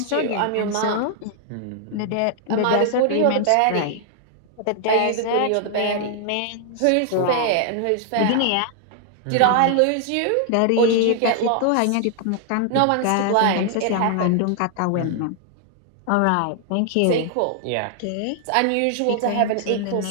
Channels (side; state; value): both; different; correlation 0.00